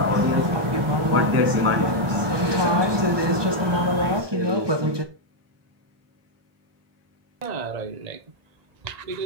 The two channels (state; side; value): late; left; 1.2 ms